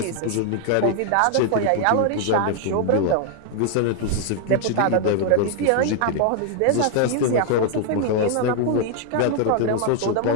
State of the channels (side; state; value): both; different; correlation 0.00